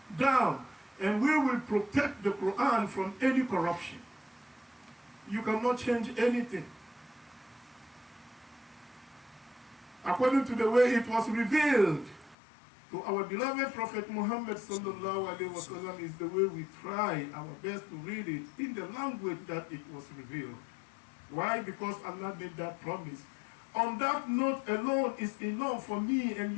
down, and we will protect the Quran from any corruption. You cannot change anything. According to the way it was revealed to our beloved Prophet Muhammad sallallahu alaihi wasallam is the way we try our best to read it in the language that it was revealed. Why? Because Allah made that promise. On that note alone is enough for me and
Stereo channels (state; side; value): drops out; right; at 12.4 s